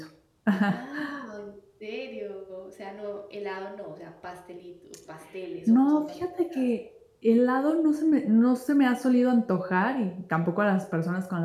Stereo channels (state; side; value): identical; both; correlation 1.00